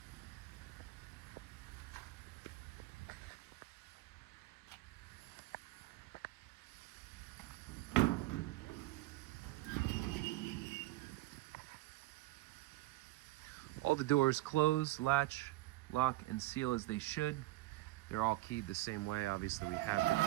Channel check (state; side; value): quieter; left; 17.7 dB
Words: All the doors close, latch, lock, and seal as they should. They're all keyed the same way. Obviously, we have